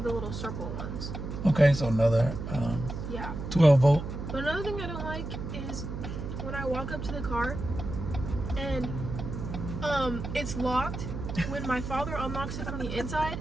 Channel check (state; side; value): noise; right; hum, 6 dB below the sound